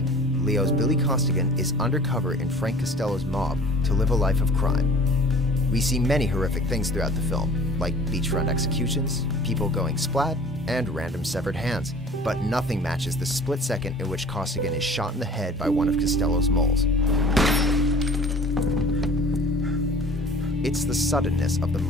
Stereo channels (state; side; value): normal; both; correlation 0.47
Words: Leo's Billy Costigan is undercover in Frank Costello's mob to live a life of crime. We see many horrific things throughout the film, like beachfront executions, people going splat, and random severed hands. But nothing matches the split second in which Costigan is shot in the head by one of Costello's moles. It's the suddenness of the